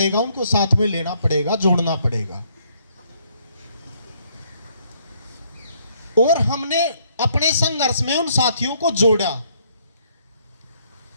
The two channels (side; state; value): both; inverted; correlation -0.69